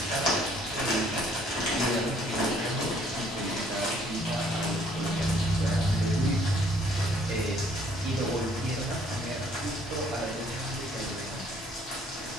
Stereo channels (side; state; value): both; normal; correlation 0.62